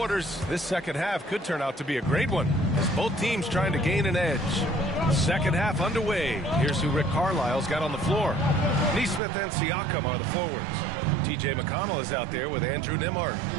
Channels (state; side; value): drops out; left; at 9.2 s